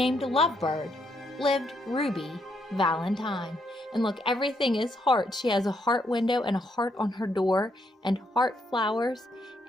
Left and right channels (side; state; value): both; normal; correlation 0.76